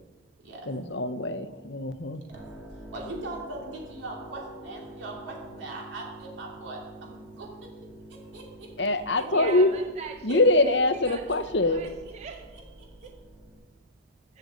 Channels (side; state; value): both; normal; correlation -0.18